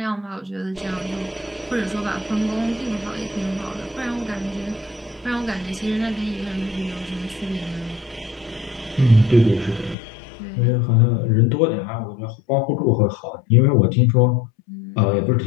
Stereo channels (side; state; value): right; drops out; at 10.0 s